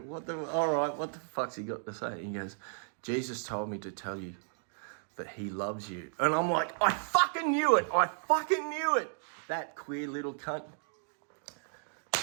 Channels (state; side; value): silent; left; digital silence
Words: All right, what the fuck's he got to say?" He goes, "Jesus told me to tell you that he loves you." And I'm like, I fucking knew it. That queer little cunt.